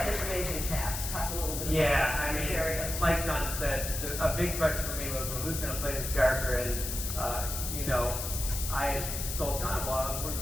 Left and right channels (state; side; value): noise; left; hiss, 5 dB below the sound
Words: this amazing cast. Talk a little bit about I mean, areas. like Jon said, a big question for me was, well, who's going to play this character? And, I told Jon, well,